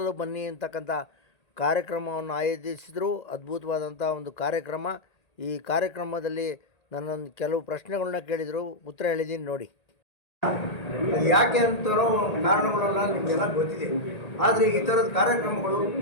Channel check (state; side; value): late; right; 1.8 ms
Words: ಬನ್ನಿ ಅಂತಕ್ಕಂಥ ಕಾರ್ಯಕ್ರಮವನ್ನು ಆಯೋಜಿಸಿದರು. ಅದ್ಭುತವಾದಂಥ ಒಂದು ಕಾರ್ಯಕ್ರಮ. ಈ ಕಾರ್ಯಕ್ರಮದಲ್ಲಿ ನನ್ನೊಂದು ಕೆಲವು ಪ್ರಶ್ನೆಗಳನ್ನ ಕೇಳಿದರು, ಉತ್ತರ ಹೇಳಿದ್ದೀನಿ ನೋಡಿ. ಯಾಕೆ ಅಂತರೋ ಕಾರಣಗಳೆಲ್ಲ ನಿಮಗೆಲ್ಲ ಗೊತ್ತಿದೆ. ಆದರೆ ಈ ಥರದ ಕಾರ್ಯಕ್ರಮಗಳು